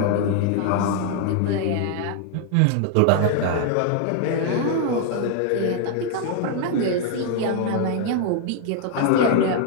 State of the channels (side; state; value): both; different; correlation 0.00